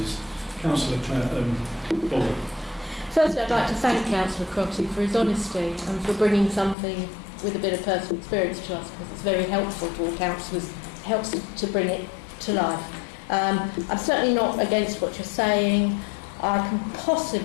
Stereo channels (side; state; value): right; drops out; at 6.8 s